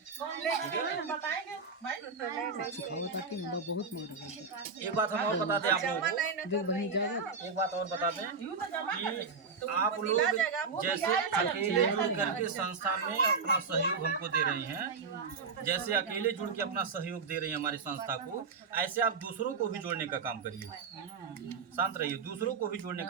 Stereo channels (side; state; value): left; quieter; 5.0 dB